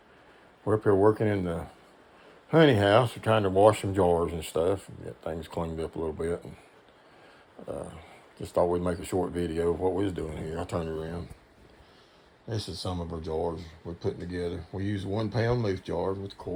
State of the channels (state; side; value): identical; both; correlation 1.00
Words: we're up here working in the honey house. We're trying to wash some jars and stuff and get things cleaned up a little bit. And, just thought we'd make a short video of what we was doing here. I turned around. This is some of our jars we're putting together. We use 1 pound leaf jars with